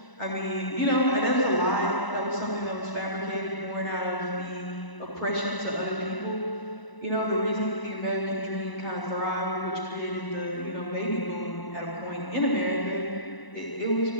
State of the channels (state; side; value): late; right; 1.0 ms